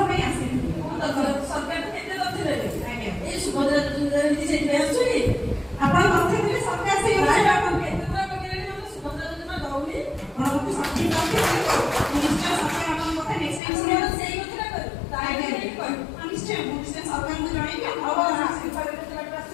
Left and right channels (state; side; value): drops out; right; at 13.6 s